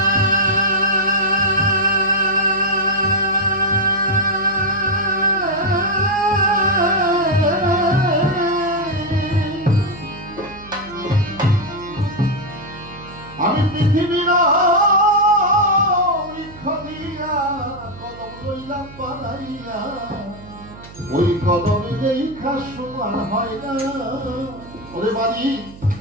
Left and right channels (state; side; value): noise; right; hum, 18 dB below the sound